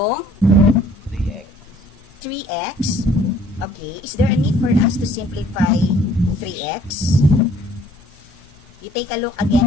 3x. 3x. Okay. Is there a need for us to simplify 3x? You take a look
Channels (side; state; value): both; normal; correlation 0.57